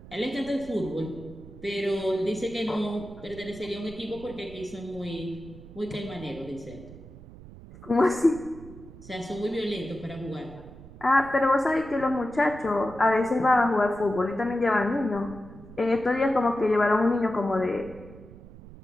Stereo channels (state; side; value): noise; right; rumble, 18 dB below the sound